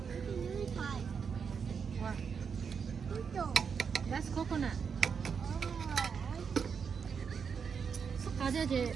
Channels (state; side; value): quieter; left; 6.3 dB